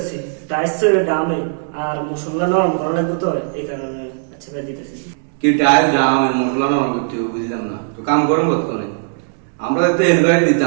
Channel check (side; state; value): left; silent; digital silence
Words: টাইসের দামে আর মশলা নরম করা লাগবে তো এই কারণে। আচ্ছা ভাই, দিতেছি। কি টাইম দাম মশলা নরম করতে হবে, বুঝলাম না তো কাম করেন কতক্ষণে? আমরা তো হেলপারে